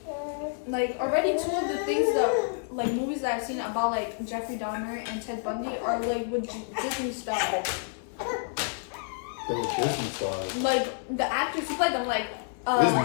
already two of the things that like movies that I've seen about like Jeffrey Dahmer and Ted Bundy are like with Disney stars. They were Disney stars. Like the actors who played them, like Disney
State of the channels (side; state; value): right; silent; 59 dB below the other